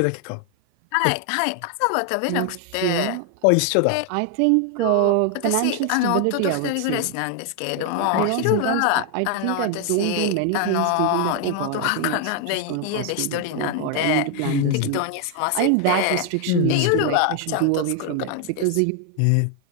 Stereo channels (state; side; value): different; both; correlation 0.00